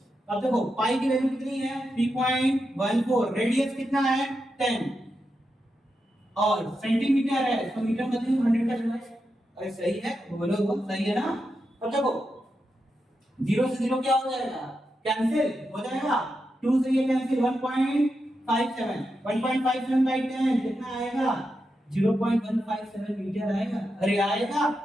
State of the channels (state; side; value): normal; both; correlation 0.87